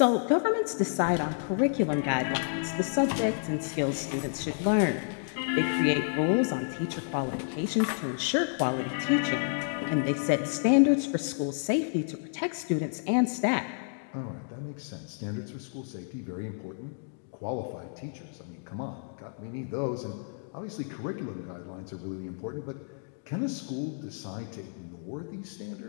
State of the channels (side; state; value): right; silent; digital silence